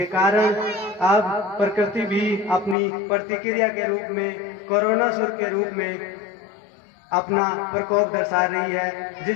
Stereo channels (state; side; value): drops out; right; at 2.8 s